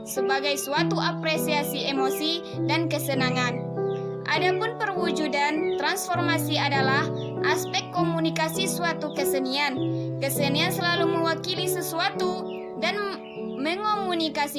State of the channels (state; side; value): identical; both; correlation 1.00